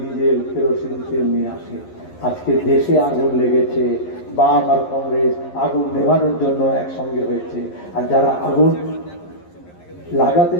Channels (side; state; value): right; late; 11 ms